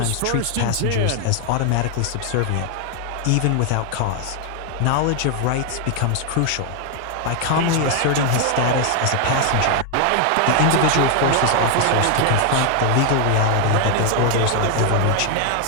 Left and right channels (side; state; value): both; different; correlation 0.00